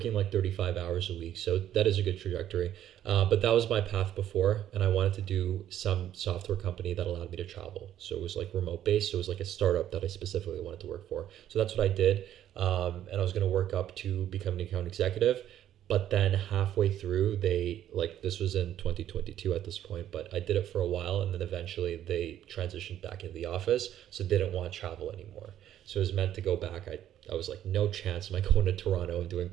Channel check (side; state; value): left; quieter; 11.4 dB